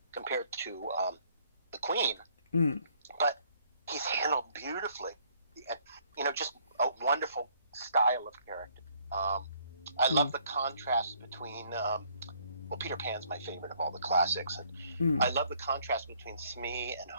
compared to the Queen, mm, but he's handled beautifully, and just a wonderful style of character. I mm, love the contrast between. Well, Peter Pan's my favorite of all the classics, and mm. I love the contrast between Smee and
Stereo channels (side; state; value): both; inverted; correlation -0.64